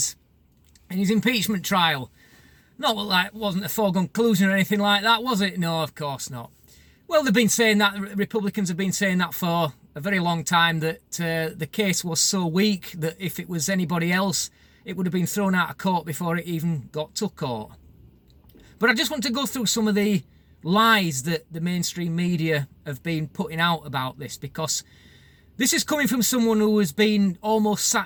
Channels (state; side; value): identical; both; correlation 1.00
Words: in his impeachment trial. Not like wasn't a foregone conclusion or anything like that, was it? No, of course not. Well, they've been saying that, Republicans have been saying that for a very long time, that the case was so weak that if it was anybody else, it would have been thrown out of court before it even got to court. But I just want to go through some of the lies that the mainstream media have been putting out about this, because this is coming from someone who has been almost